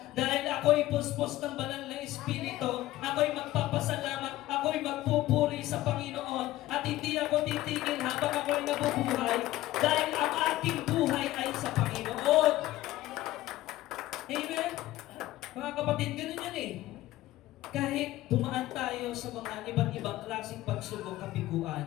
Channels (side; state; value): right; quieter; 16.0 dB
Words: Dahil ako'y puspos ng banal na Espiritu. Ako'y magpapasalamat. Ako'y magpupuri sa Panginoon. At hindi ako titigil habang ako'y nabubuhay. Dahil ang aking buhay ay sa Panginoon. Amen? Mga kapatid, ganun yan eh. Kahit dumaan tayo sa mga iba't ibang klaseng pagsubok,